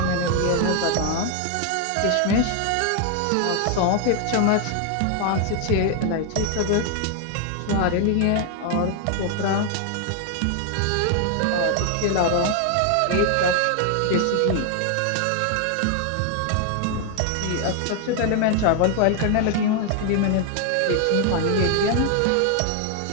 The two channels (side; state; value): both; different; correlation 0.00